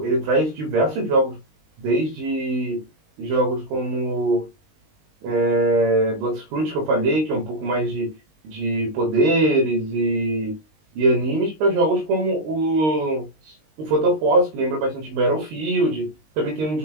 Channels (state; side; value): late; left; 19 ms